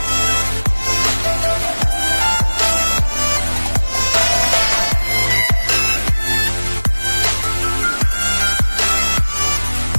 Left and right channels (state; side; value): inverted; both; correlation -1.00